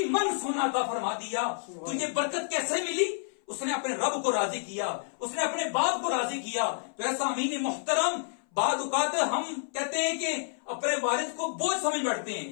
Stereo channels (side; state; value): right; silent; 57 dB below the other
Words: मन सोना अता फरमा दिया। तो ये बरकत कैसे मिली? उसने अपने रब को राजी किया, उसने अपने बाप को राजी किया। तो ऐसा अमीन मोहतरम, बाद औकात हम कहते हैं कि अपने वालिद को बोझ समझ बैठते हैं,